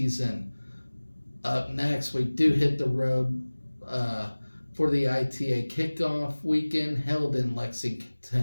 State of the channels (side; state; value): both; inverted; correlation -1.00